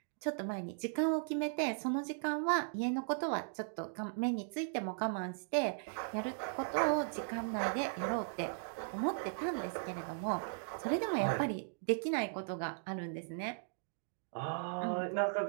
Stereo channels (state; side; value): silent; left; digital silence